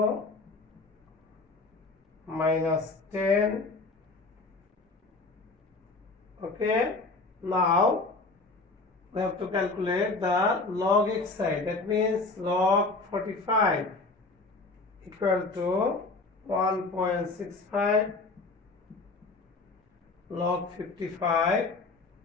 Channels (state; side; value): quieter; right; 3.6 dB